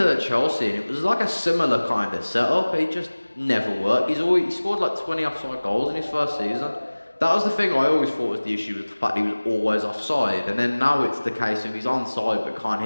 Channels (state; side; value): inverted; both; correlation -1.00